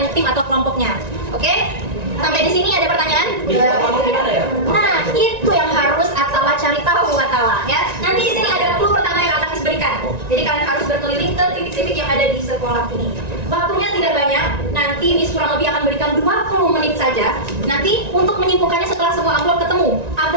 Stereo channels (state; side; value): late; left; 1.9 ms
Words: tim atau kelompoknya. Oke? Sampai di sini ada pertanyaan? Nah, itu yang harus Atala cari tahu Atala ya. Nanti di sini ada clue pertama yang akan diberikan. Jadi kalian harus berkeliling ke titik-titik yang ada di sekolah ini. Waktunya tidak banyak. Nanti Miss kurang lebih akan berikan 20 menit saja. Nanti untuk menyimpulkannya setelah semua amplop ketemu.